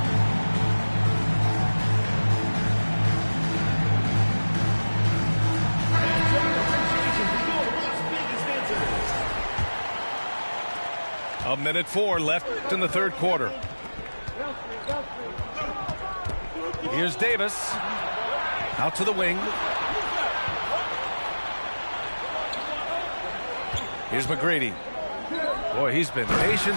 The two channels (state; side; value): inverted; both; correlation -1.00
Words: A minute 4 left in the third quarter. Here's Davis. Out to the wing. Here's McGrady. Boy, he's been